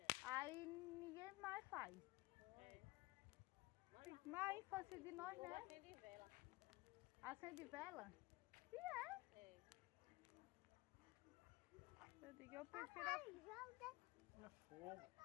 Aí ninguém mais faz. Mas a infância de nós, né? Acende vela? E é. Eu digo, eu prefiro. É fogo.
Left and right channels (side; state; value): right; quieter; 20.6 dB